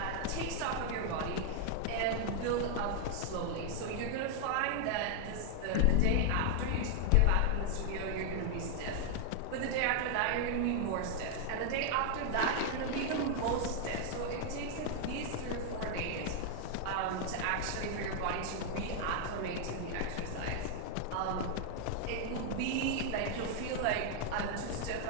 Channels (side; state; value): both; different; correlation 0.00